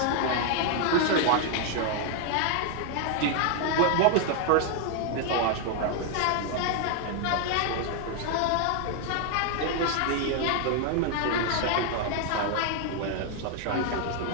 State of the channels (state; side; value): different; both; correlation 0.00